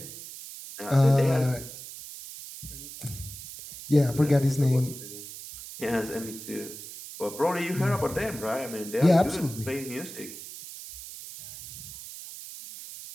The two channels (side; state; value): right; noise; hiss, 12 dB below the sound